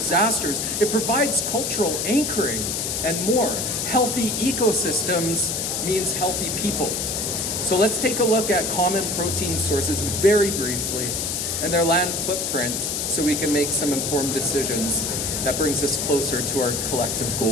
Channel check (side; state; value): left; noise; hiss, 1 dB below the sound